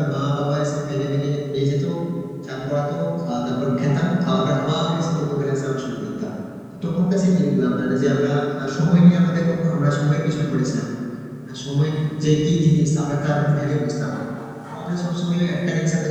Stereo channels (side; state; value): both; identical; correlation 1.00